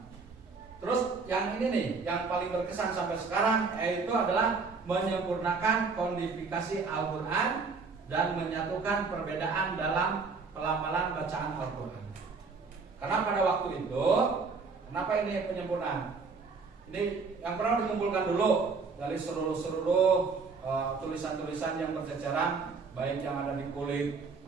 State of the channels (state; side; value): quieter; left; 4.6 dB